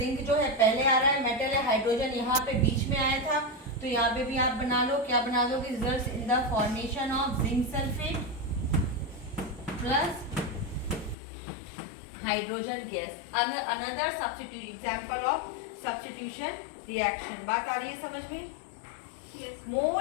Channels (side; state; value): right; drops out; at 11.2 s